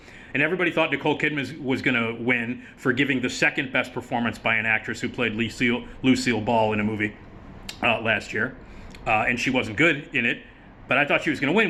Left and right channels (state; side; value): identical; both; correlation 1.00